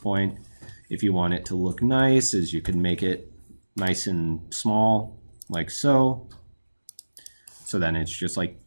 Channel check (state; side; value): inverted; both; correlation -1.00